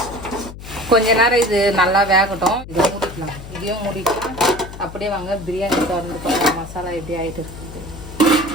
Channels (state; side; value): noise; left; hum, 13 dB below the sound